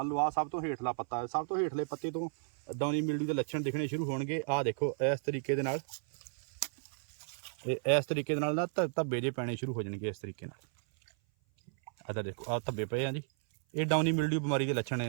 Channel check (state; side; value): silent; left; 55 dB below the other